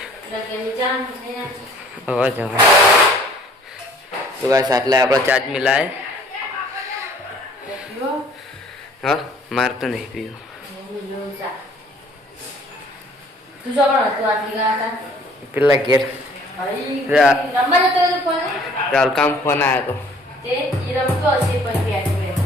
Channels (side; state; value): both; normal; correlation 0.55